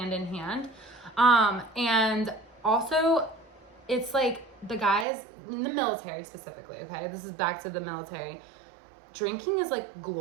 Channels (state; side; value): drops out; left; at 5.1 s